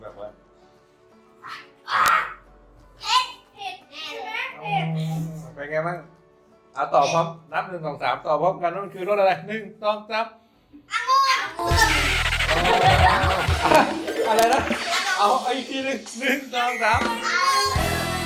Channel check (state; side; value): identical; both; correlation 1.00